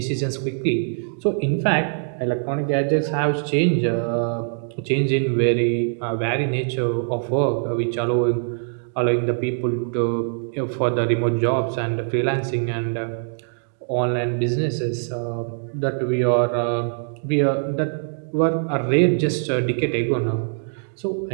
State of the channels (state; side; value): silent; left; digital silence